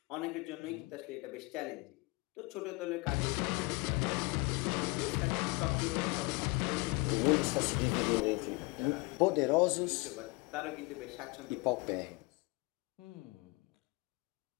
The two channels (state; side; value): quieter; right; 25.8 dB